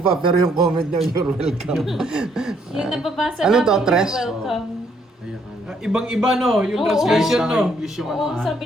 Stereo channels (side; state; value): both; normal; correlation 0.70